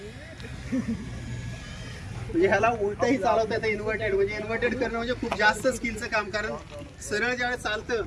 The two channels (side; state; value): both; identical; correlation 1.00